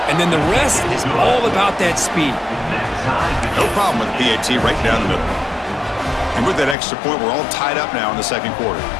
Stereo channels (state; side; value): drops out; right; at 6.8 s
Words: and then the rest is all about that speed. No problem with PAT right down the middle. And with that extra point, we're all tied up now in the second quarter.